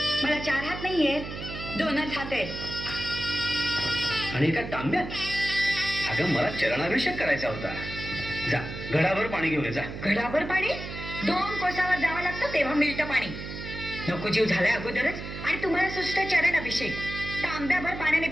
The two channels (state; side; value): noise; right; hum, 8 dB below the sound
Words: मला 4 हात नाहीयेत, 2च हात आहेत. आणि एका तांब्यात. अगं मला चरणाभिषेक करायचा होता. जा घडाभर पाणी घेऊन ये जा. घडाभर पाणी 2 कोसावर जावं लागतं तेव्हा मिळतं पाणी. नको जीव झालाय अगोदरच आणि तुम्हाला सुस्त चरण अभिषेक. तांब्याभर पाण्याने